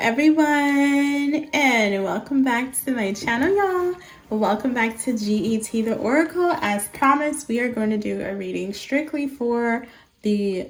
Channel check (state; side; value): identical; both; correlation 1.00